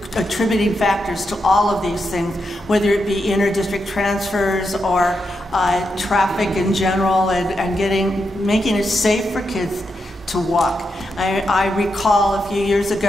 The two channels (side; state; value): both; normal; correlation 0.84